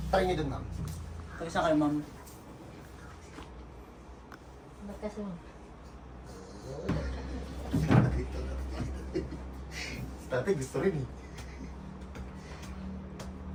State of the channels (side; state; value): both; identical; correlation 1.00